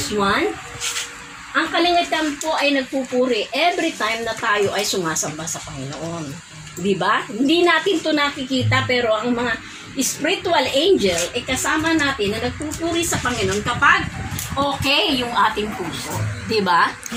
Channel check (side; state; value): both; identical; correlation 1.00